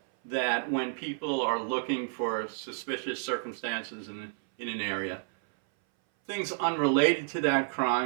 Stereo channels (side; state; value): left; silent; 58 dB below the other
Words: that when people are looking for suspicious circumstances in an area, things unrelated to that